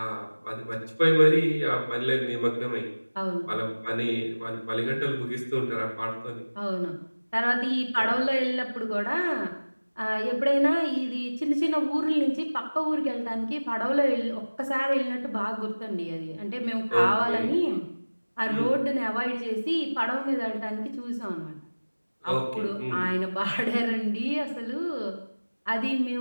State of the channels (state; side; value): inverted; both; correlation -1.00